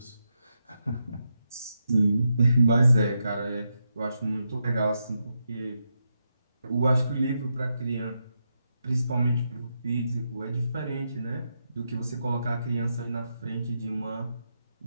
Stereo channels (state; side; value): inverted; both; correlation -0.84